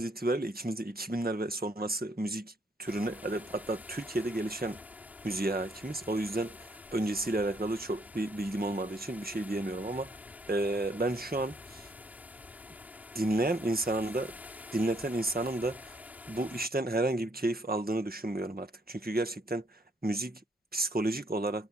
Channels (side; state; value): both; normal; correlation 0.69